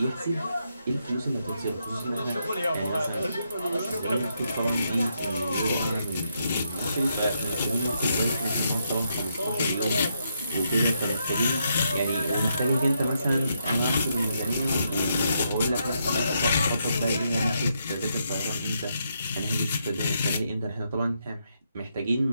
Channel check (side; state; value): both; inverted; correlation -0.79